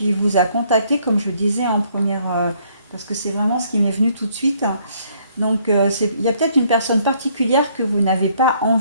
vous a contacté, comme je disais en première, parce que c'est vraiment ce qui m'est venu tout de suite. Donc, il y a peut-être une personne particulière que vous n'avez pas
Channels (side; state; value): both; inverted; correlation -0.66